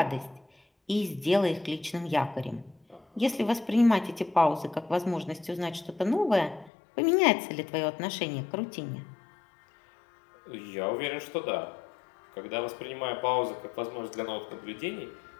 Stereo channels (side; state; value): right; drops out; at 6.7 s